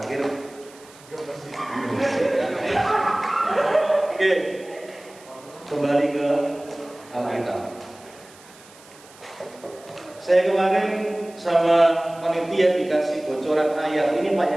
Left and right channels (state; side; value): noise; right; hiss, 24 dB below the sound